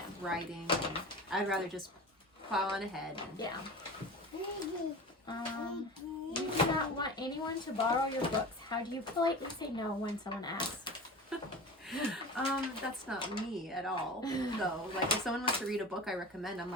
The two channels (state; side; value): normal; both; correlation 0.33